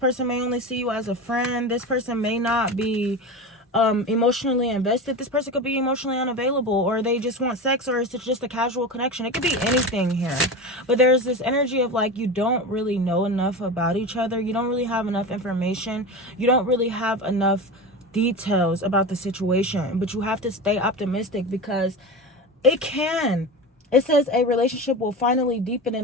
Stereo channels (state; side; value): normal; both; correlation 0.26